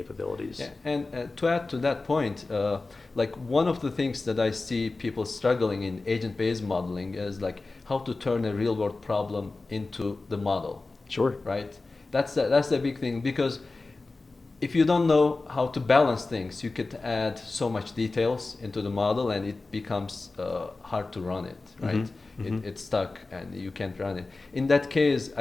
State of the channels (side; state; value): right; quieter; 3.5 dB